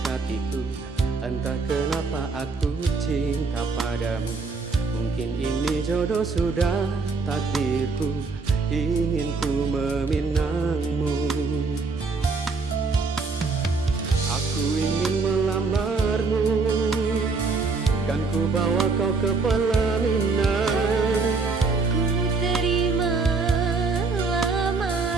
Entah kenapa aku cinta padamu. Mungkin ini jodoh sudah takdirku, ingin ku meminangmu. Aku ingin melamarmu, kan ku bawa kau ke pelaminan. Ku terima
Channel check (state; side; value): quieter; left; 4.2 dB